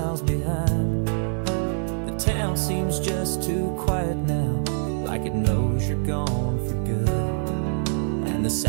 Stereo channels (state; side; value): silent; left; digital silence